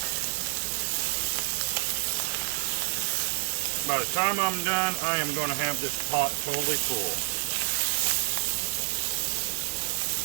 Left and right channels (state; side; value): silent; left; digital silence